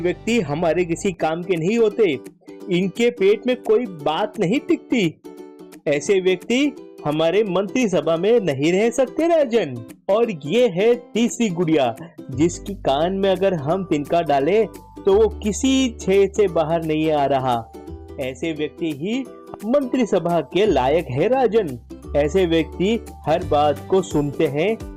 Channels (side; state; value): both; identical; correlation 1.00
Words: हमारे किसी काम के नहीं होते। इनके पेट में कोई बात नहीं टिकती। ऐसे व्यक्ति हमारे मंत्री सभा में नहीं रह सकते राजन। और ये है तीसरी गुड़िया जिसकी कान में अगर हम तिनका डालें तो वो किसी छेद से बाहर नहीं आ रहा। ऐसे व्यक्ति ही मंत्री सभा के लायक है राजन। ऐसे व्यक्ति हर बात को सुनते हैं,